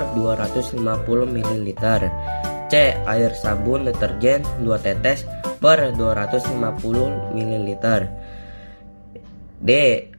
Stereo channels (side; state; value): both; inverted; correlation -1.00